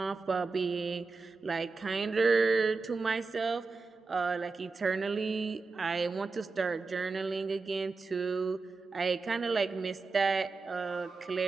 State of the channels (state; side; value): quieter; left; 4.1 dB